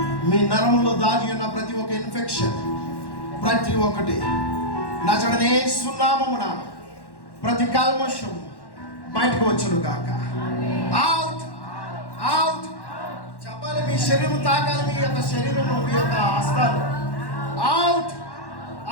మీ నరములో దాగి ఉన్న ప్రతి ఒక్క ఇన్ఫెక్షన్, ప్రతి ఒక్కటి నజరేయుడైన యేసు నామమున ప్రతి కల్మషం బయటకు వచ్చును గాక. అవుట్ అవుట్ చెప్పాలి. మీ శరీరం తాకాలి, మీ యొక్క శరీరము, మీ యొక్క హస్తాలు. Out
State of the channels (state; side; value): late; right; 1.1 ms